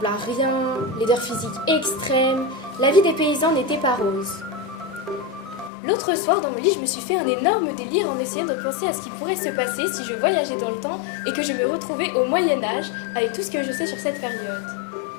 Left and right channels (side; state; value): right; drops out; at 5.7 s